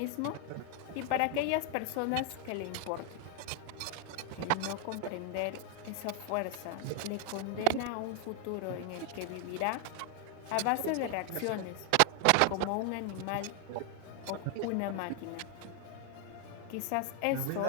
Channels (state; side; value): different; both; correlation 0.00